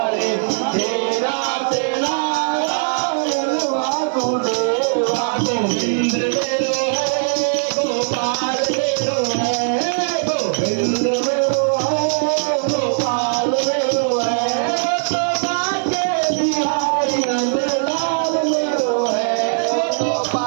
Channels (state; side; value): silent; left; 66 dB below the other